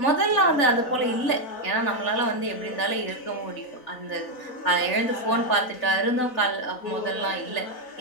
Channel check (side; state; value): right; late; 4.0 ms